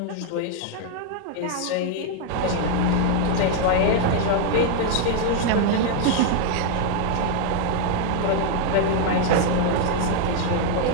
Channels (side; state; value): both; different; correlation 0.00